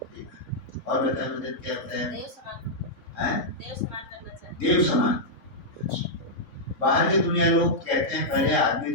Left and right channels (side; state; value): right; late; 4.6 ms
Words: ठीक है। और बताए मुझे क्या होता है, देव समान। अच्छा। बाहर की दुनिया लोग कहते हैं पहले आदमी